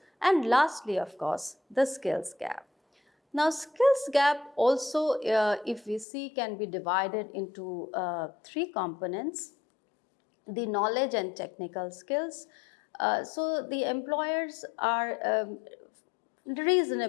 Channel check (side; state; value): right; drops out; at 6.1 s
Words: And lastly, of course, the skills gap. Now, skills gap also, if we see, can be divided into three components: the knowledge and technical skills. So the employers are